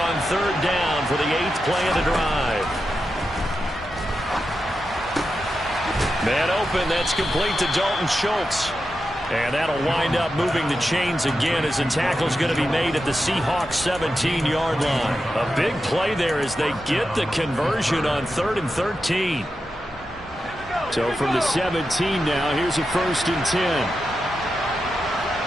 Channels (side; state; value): both; normal; correlation 0.89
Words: third down for the 8th play of the drive. Man open, that's complete to Dalton Schultz. And that'll wind up moving the chains again as the tackle's going to be made at the Seahawks 17-yard line. A big play there as they get the conversion on 3rd and 13. So from the 17 now, here's a 1st and 10.